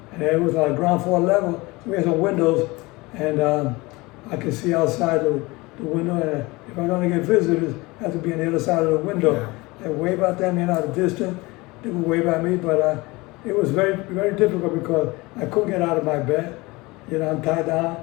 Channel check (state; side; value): quieter; right; 22.8 dB